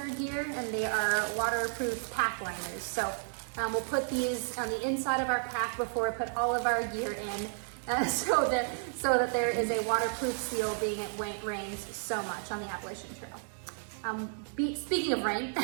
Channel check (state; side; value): silent; left; digital silence